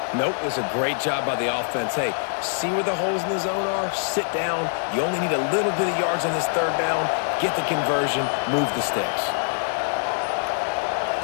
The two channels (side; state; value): right; silent; digital silence